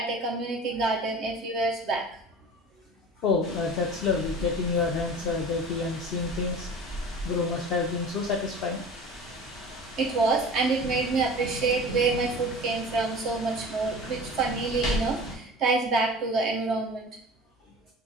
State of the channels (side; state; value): both; normal; correlation 0.38